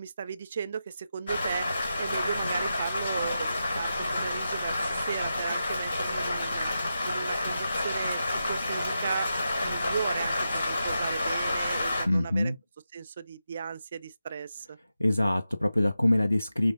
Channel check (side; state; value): both; inverted; correlation -0.89